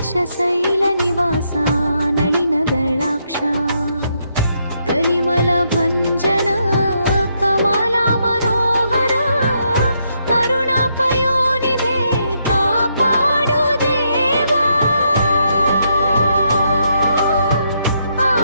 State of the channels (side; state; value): both; inverted; correlation -0.77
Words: ನಿವಾಸ ನಳಿನದಳಾಕ್ಷ ಕಲಿಮಲ ಭಂಜನ ಕಮಲ ಮನೋಹರ ಕರುಣಾಪಯೋನಿಧೆ ಕಾಪಾಡು ದೇವಾ